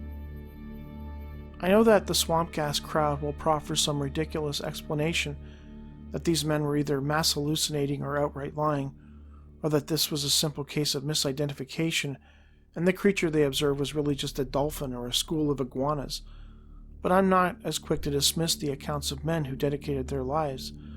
I know that the swamp gas crowd will proffer some ridiculous explanation that these men were either mass hallucinating or outright lying, or that this was a simple case of misidentification and the creature they observed was really just a dolphin or a school of iguanas. But I'm not as quick to dismiss the accounts of men who dedicated their lives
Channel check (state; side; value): identical; both; correlation 1.00